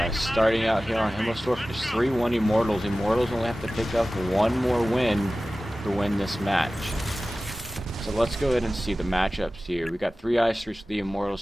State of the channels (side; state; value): both; normal; correlation 0.96